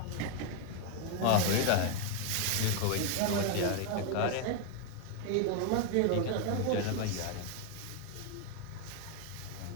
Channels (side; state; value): both; different; correlation 0.01